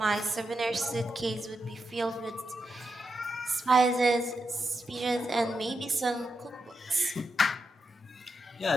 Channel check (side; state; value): both; normal; correlation 0.85